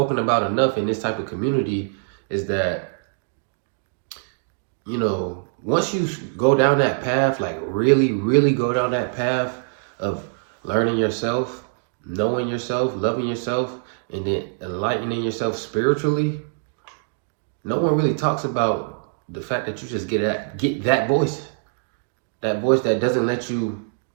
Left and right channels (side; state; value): left; silent; digital silence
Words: about enough in this type of community is that, once you go down that path, like really, really go down that path of learning yourself, knowing yourself, loving yourself, and then enlightening yourself spiritually, no one really talks about the fact that you just get that voice that doesn't let you